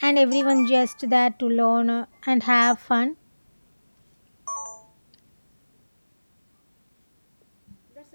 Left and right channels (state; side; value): inverted; both; correlation -1.00